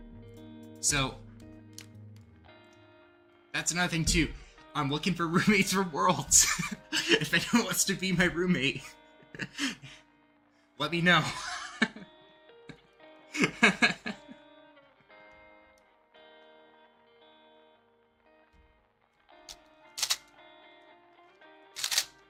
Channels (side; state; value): both; identical; correlation 1.00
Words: So that's another thing too. I'm looking for roommates for Worlds. If anyone wants to be my roommate, let me know.